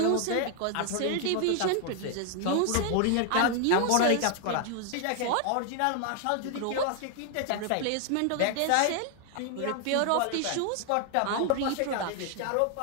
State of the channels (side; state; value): both; different; correlation 0.00